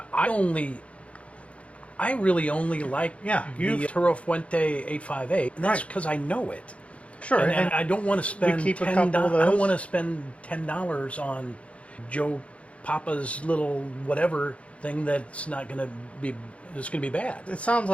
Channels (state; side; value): late; right; 0.063 ms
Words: really only like the Toro Fuente 858, and that's because I know it. Sure. And I don't want to spend keep a couple of those. I don't want to spend $10 on Joe Papa's little whatever thing that's not going to be. It's going to be bad. It sounds